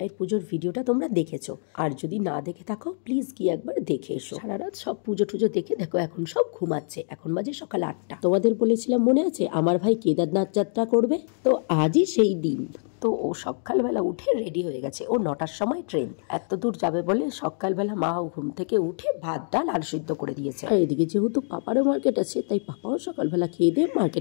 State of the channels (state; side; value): silent; right; 61 dB below the other